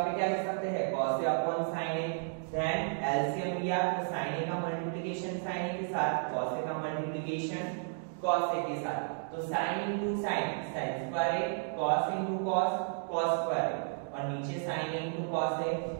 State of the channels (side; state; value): left; silent; digital silence